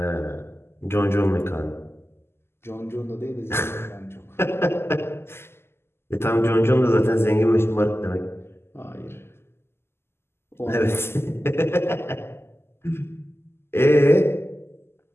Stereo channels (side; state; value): right; late; 0.12 ms